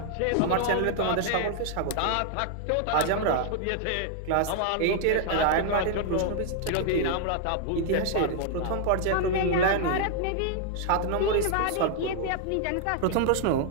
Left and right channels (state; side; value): different; both; correlation 0.00